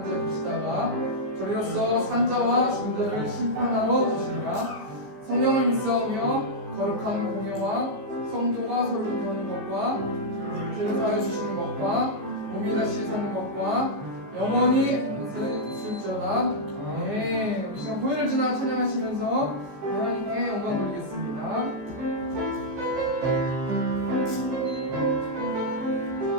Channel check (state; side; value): late; left; 14 ms